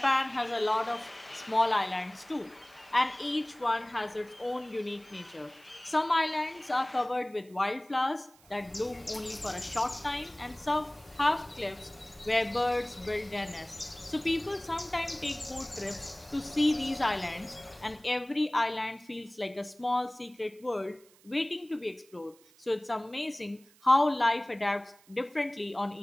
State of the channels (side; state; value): right; noise; hiss, 28 dB below the sound